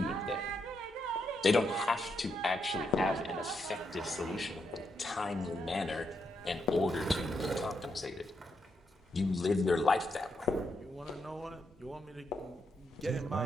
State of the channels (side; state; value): both; normal; correlation 0.80